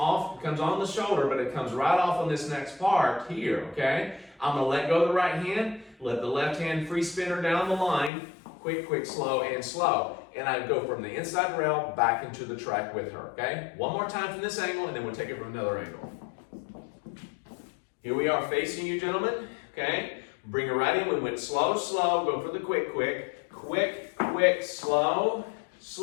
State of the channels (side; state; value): right; drops out; at 8.1 s